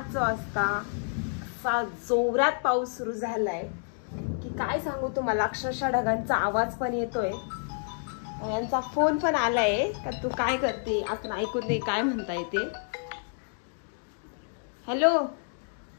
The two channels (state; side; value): silent; right; 58 dB below the other